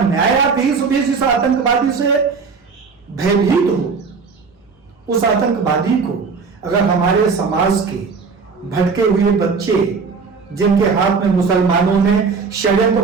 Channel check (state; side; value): quieter; left; 5.0 dB